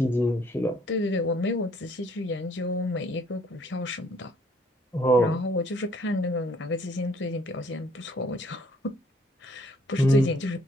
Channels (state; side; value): normal; both; correlation 0.63